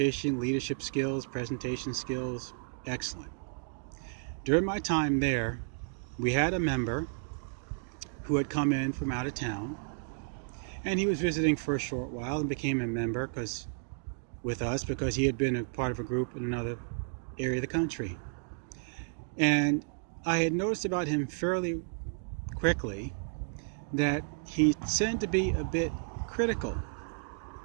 leadership skills, presentation skills, excellent. During my time there, we had a member who had come in from out of town, and he was visiting for a short while and became a member with us because he had been a part of a group in another area of the country. And I had noticed about him fairly quickly that he tended to be a bit critical.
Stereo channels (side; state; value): left; silent; digital silence